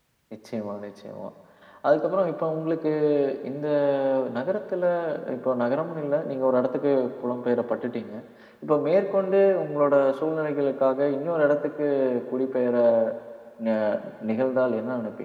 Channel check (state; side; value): identical; both; correlation 1.00